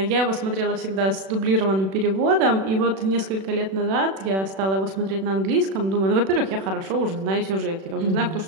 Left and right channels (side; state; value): left; late; 36 ms